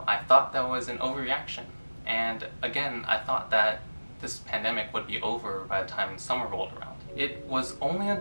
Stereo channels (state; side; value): inverted; both; correlation -1.00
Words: I thought that was an overreaction. And again, I thought that this pandemic would be over by the time summer rolled around. It was only